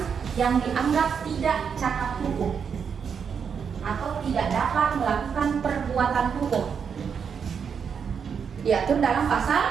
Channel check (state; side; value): quieter; left; 6.8 dB